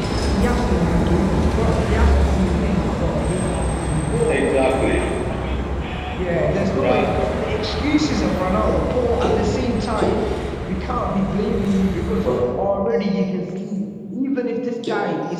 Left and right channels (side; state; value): both; identical; correlation 1.00